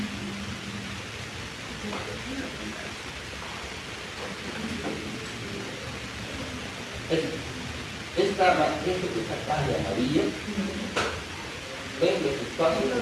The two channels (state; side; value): identical; both; correlation 1.00